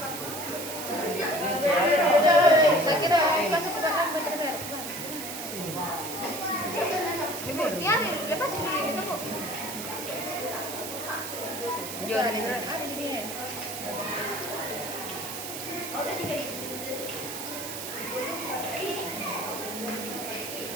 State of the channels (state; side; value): noise; right; hiss, 7 dB below the sound